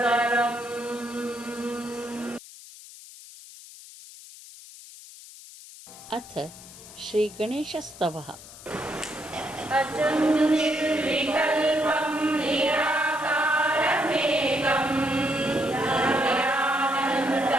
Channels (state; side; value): noise; left; hiss, 17 dB below the sound